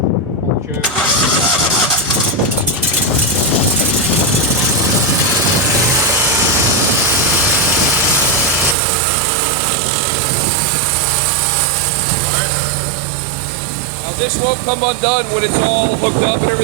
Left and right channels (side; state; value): left; drops out; at 8.8 s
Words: Pull the choke. Now this won't come undone when it's all hooked up and